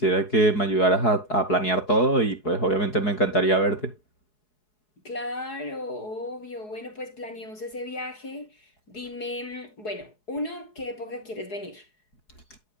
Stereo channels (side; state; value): right; late; 4.7 ms